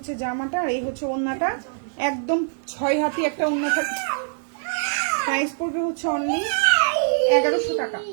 জামাটা, আর এই হচ্ছে ওড়নাটা, একদম 6 হাতি একটা ওড়না থাকে। প্রাইস পড়বে হচ্ছে অনলি 1100 টাকা।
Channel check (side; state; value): left; silent; digital silence